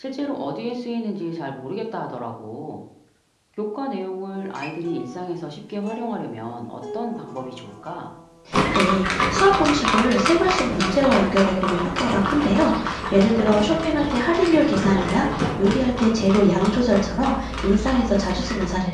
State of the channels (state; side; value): identical; both; correlation 1.00